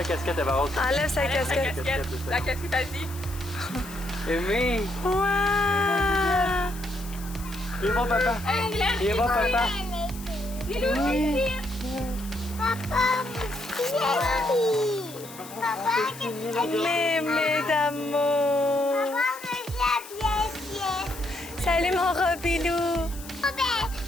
casquette, Eva Rose. Enlève sa casquette. La casquette a dit. Aimée! Wow! Il va papa! Il va papa! Papa, Mémé d'amour! Salut mon Robilou!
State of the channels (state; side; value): noise; left; hiss, 16 dB below the sound